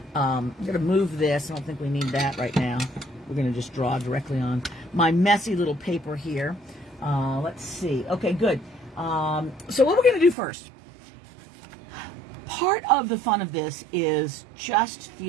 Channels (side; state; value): left; drops out; at 10.4 s